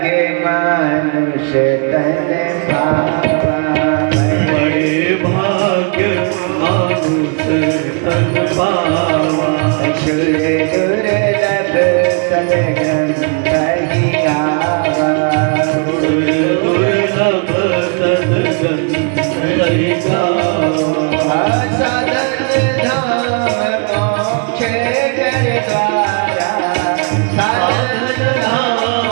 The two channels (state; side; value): quieter; left; 36.8 dB